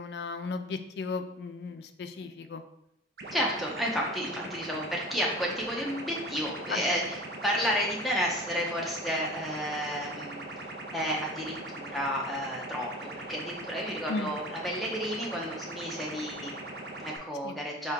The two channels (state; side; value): normal; both; correlation 0.38